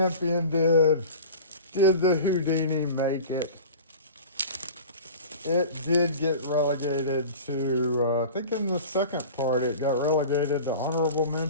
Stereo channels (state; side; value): inverted; both; correlation -0.38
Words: did. Did the Houdini make it? It did get relegated to, I think in the second part, it got relegated to honorable